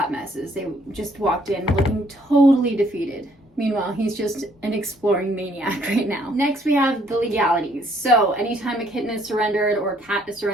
messes. They just walked in looking totally defeated. Meanwhile, he's just an exploring maniac right now. Next, we have the legalities. So anytime a kitten is surrendered or a cat is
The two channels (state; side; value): normal; both; correlation 0.66